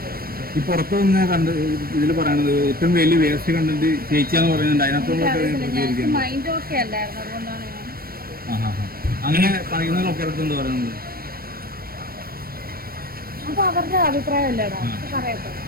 ഈ പുറത്തു നിന്ന് കണ്ട് ഇതിൽ പറയുന്നത് ഏറ്റവും വലിയ വേസ്റ്റ് കണ്ടിട്ട് ചേച്ചിയാന്ന് പറയുന്നുണ്ട്. അതിനകത്തുള്ള മൈൻഡ് ഓക്കെ അല്ലായിരുന്നു, അതുകൊണ്ടാണ് ഞാൻ അങ്ങനെ പറയുന്നതിലൊക്കെ എന്താ പറയുന്നത്? അപ്പൊ അവരുടെ അഭിപ്രായം അല്ലേടാ, പറയട്ടെ.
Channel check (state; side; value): late; left; 0.43 ms